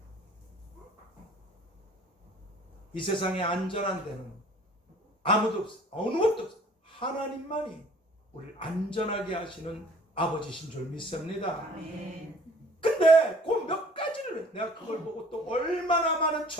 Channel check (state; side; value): normal; both; correlation 0.52